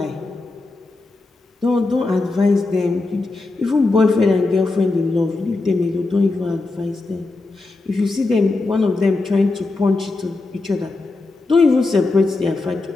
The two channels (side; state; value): right; quieter; 3.4 dB